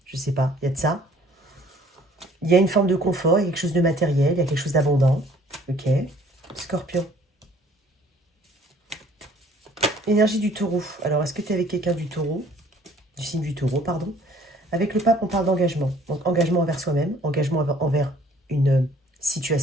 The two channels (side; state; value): both; normal; correlation 0.56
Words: je sais pas, il y a de ça. Il y a une forme de confort, il y a quelque chose de matériel, il y a quelque chose d'abondant. Ok. Scorpion. Énergie du taureau. Alors, est-ce que tu es avec quelqu'un du taureau? Du signe du taureau, pardon. Avec le pape, on parle d'engagement. Donc, engagement envers soi-même, engagement envers une